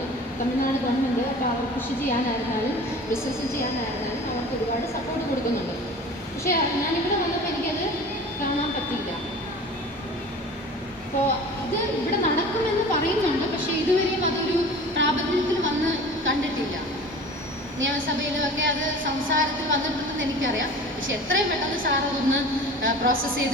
തമിഴ്നാട് ഗവൺമെൻറ് അപ്പോൾ അവർ കൃഷി ചെയ്യാനായിരുന്നാലും ബിസിനസ് ചെയ്യാനായിരുന്നാലും അവർക്ക് ഒരുപാട് സപ്പോർട്ട് കൊടുക്കുന്നുണ്ട്. പക്ഷേ ഞാനിവിടെ വന്നപ്പോൾ എനിക്കത് കാണാൻ പറ്റില്ല. അപ്പോൾ ഇത് ഇവിടെ നടക്കുമെന്ന് പറയുന്നുണ്ട്, പക്ഷേ ഇതുവരെയും അതൊരു പ്രാബല്യത്തിൽ വന്ന് കണ്ടിട്ടില്ല. നിയമസഭയിലുമൊക്കെ അത് സംസാരത്തിൽ വന്നിട്ടുണ്ടെന്ന് എനിക്കറിയാം. പക്ഷെ എത്രയും പെട്ടെന്ന് സാർ അതൊന്ന് പ്രോസസ്സ്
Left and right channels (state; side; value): normal; both; correlation 0.40